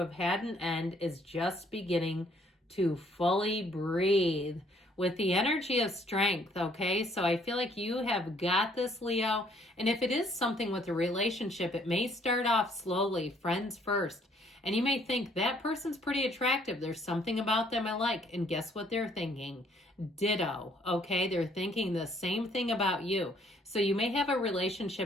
had an end is just beginning to fully breathe with the energy of strength, okay? So I feel like you have got this, Leo. And if it is something with a relationship, it may start off slowly, friends first. And you may think that person's pretty attractive. There's something about them I like. And guess what they're thinking? Ditto, okay? They're thinking the same thing about you. So you may have a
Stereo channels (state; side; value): normal; both; correlation 0.64